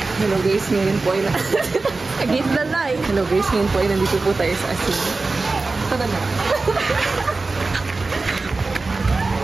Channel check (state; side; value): quieter; left; 3.6 dB